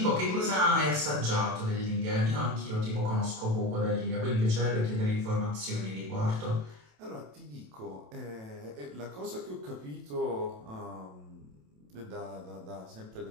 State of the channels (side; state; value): left; late; 27 ms